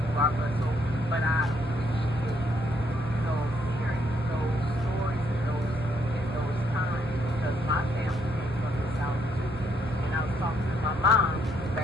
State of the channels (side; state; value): both; normal; correlation 0.72